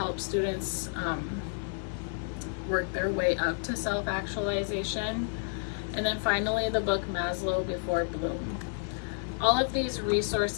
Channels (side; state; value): right; silent; 57 dB below the other